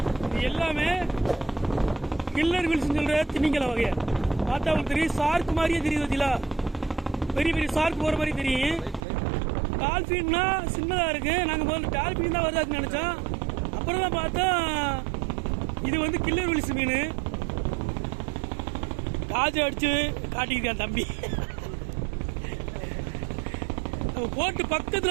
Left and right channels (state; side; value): drops out; left; at 9.0 s